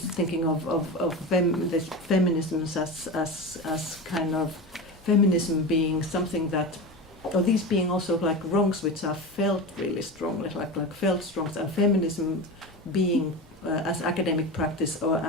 of this feminisms as kind of feminism being something that, or these being also like wrongs which are felt really strongly, like felt wrongs, and feminism being as academic practice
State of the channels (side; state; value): both; normal; correlation 0.25